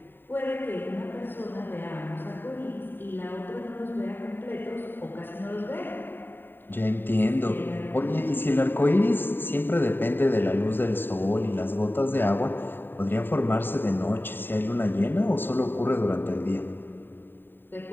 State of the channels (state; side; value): late; right; 0.095 ms